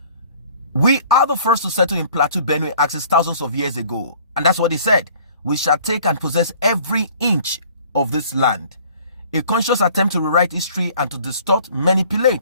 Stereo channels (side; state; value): both; inverted; correlation -0.53